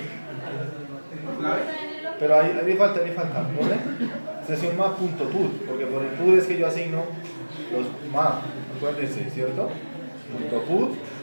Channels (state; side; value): inverted; both; correlation -1.00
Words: ¿Clave? Pero ahí le falta, ¿pone? Sesión map.put, porque por el put es que yo asigno los map, acuérdense, ¿cierto? .put,